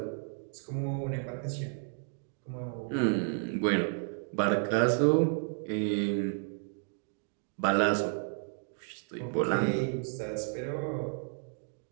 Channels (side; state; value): left; silent; 56 dB below the other